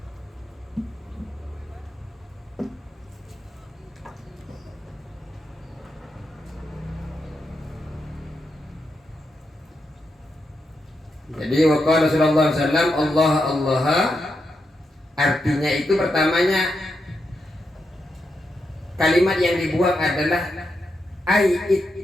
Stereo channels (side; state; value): both; normal; correlation 0.85